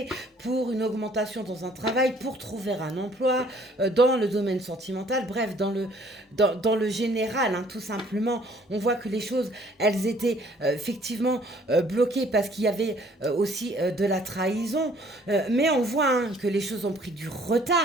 pour une augmentation dans un travail, pour trouver un emploi, dans le domaine sentimental, bref, dans le général, hein, tout simplement. On voit que les choses, elles étaient effectivement bloquées parce qu'il y avait aussi de la trahison, mais on voit hein, que les choses ont pris du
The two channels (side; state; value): both; normal; correlation 0.59